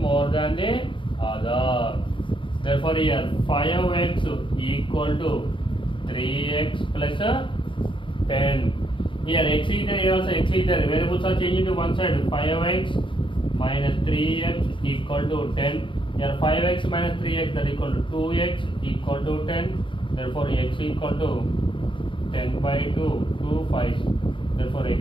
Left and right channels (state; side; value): late; right; 0.24 ms